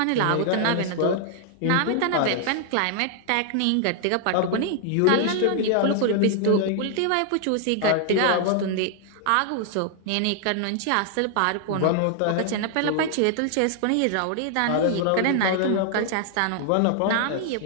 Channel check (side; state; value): both; different; correlation 0.00